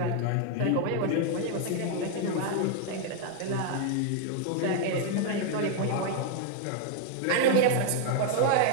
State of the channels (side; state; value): both; different; correlation 0.00